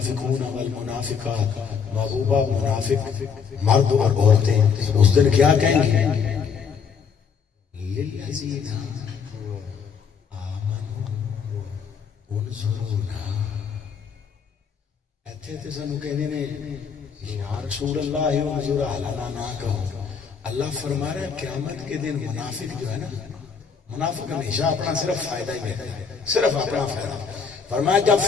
والمنافقات، محبوبہ منافق مرد اور عورتیں اس دن کیا کہیں گے؟ للذین ایتھے سانو کہنے نے یا رسول اللہ انظر اعلیٰ نہ کہو۔ اللہ فرما رہا ہے قیامت کے دن منافق جو ہے نا، منافق ہمیشہ اپنا صرف فائدہ ہی دیتا ہے، صرف اپنا فائدہ۔ فرمایا جب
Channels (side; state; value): right; quieter; 6.3 dB